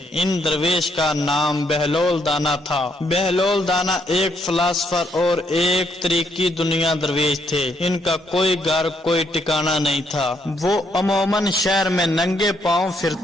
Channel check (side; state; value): both; normal; correlation 0.73